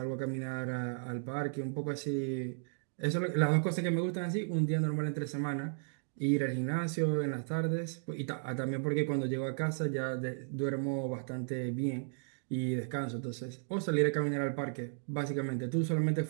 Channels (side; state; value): left; silent; digital silence